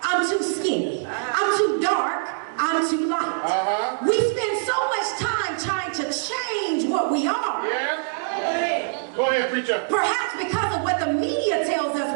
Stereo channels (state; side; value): silent; left; digital silence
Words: I'm too skinny. I'm too dark, I'm too light. We spend so much time trying to change what we are. Go ahead, preacher. Perhaps because of what the media tells